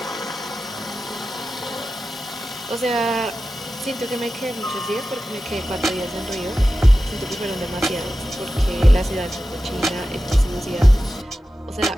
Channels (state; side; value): normal; both; correlation 0.93